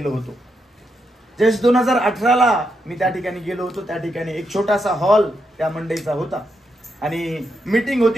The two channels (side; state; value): both; normal; correlation 0.83